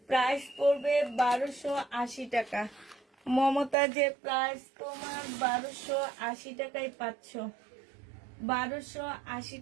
প্রাইস পড়বে 1280 টাকা। মমতাজের প্রাইস তোমার 1280 টাকায় পাচ্ছ। 1280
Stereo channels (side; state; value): left; drops out; at 3.8 s